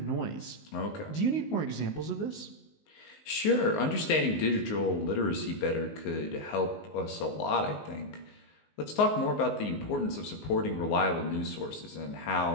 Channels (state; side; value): late; right; 19 ms